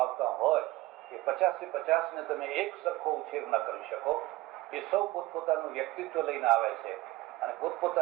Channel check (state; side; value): quieter; left; 18.7 dB